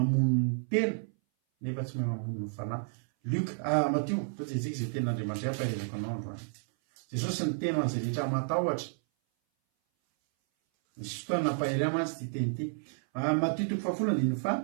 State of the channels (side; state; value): left; silent; 57 dB below the other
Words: ny tena nefa tsy mahay mamono ny fanahy. Matio toa jejika izay tenin'Andriamanitra ampairezako anao androany. Jesosy ny tena an'izay rehetra matahotra. Misy fotoana nampahery mantsy ty teny ity. Matio